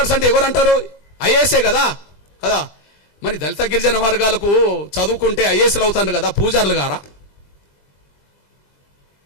అంటే ఎవరంటారు? ఐఏఎస్ఏ కదా కదా. మరి దళిత గిరిజన వర్గాలకు చదువుకుంటే ఐఏఎస్లు అవుతాను కదా, పూజారులు గారా?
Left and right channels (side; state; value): right; late; 22 ms